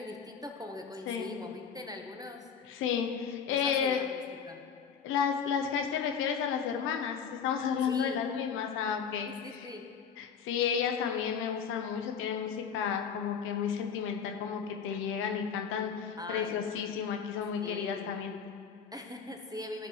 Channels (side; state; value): right; quieter; 6.9 dB